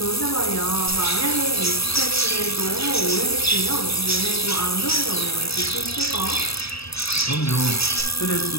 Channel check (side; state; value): right; late; 0.77 ms